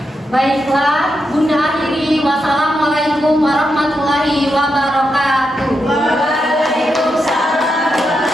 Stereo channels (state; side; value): normal; both; correlation 0.85